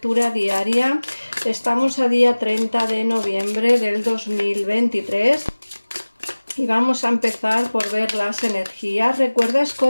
diaria. Estamos a día 30 de noviembre del 2023 y vamos a empezar por ver las energías. Recuerda,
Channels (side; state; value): both; inverted; correlation -1.00